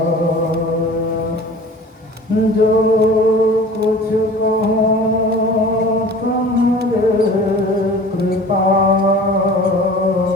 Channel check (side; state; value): both; normal; correlation 0.43